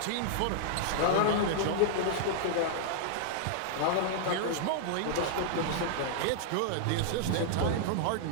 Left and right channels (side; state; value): both; different; correlation -0.01